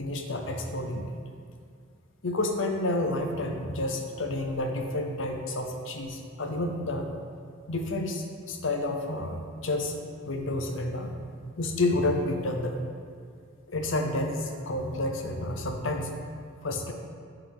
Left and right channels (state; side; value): normal; both; correlation 0.18